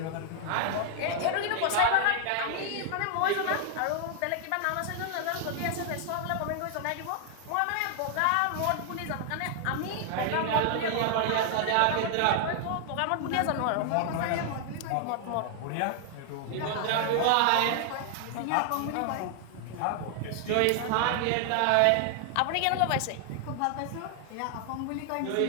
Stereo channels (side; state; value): both; different; correlation 0.00